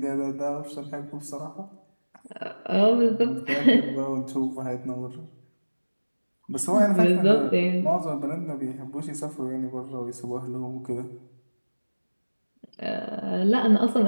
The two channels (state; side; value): inverted; both; correlation -1.00